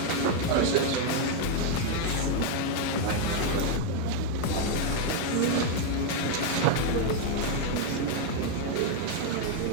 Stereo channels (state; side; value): different; both; correlation 0.01